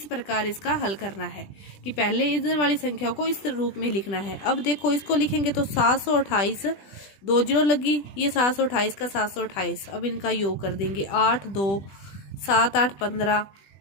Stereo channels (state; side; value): late; right; 20 ms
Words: प्रकार इसका हल करना है कि पहले इधर वाली संख्या को इस रूप में लिखना है। अब देखो इसको लिखेंगे तो 728, 2 0 लगी, ये 728 का 728। अब इनका योग कर देंगे, 8 2 7 8 15,